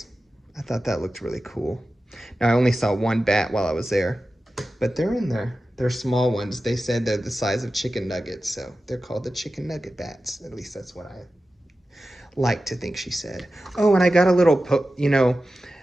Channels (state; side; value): normal; both; correlation 0.94